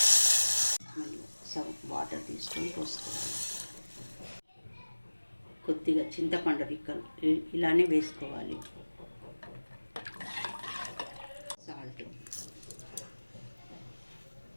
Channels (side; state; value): both; inverted; correlation -1.00